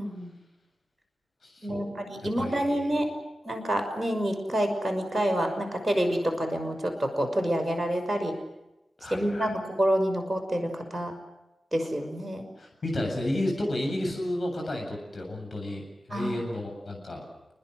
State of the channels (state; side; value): normal; both; correlation 0.93